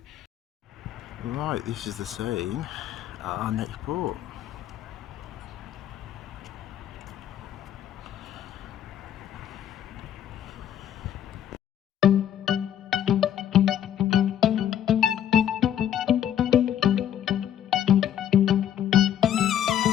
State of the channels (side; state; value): right; quieter; 10.3 dB